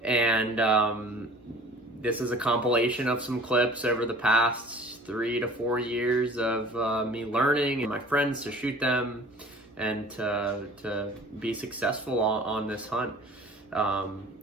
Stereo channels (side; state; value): both; normal; correlation 0.46